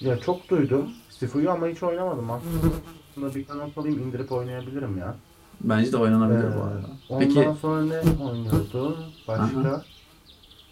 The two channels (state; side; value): identical; both; correlation 1.00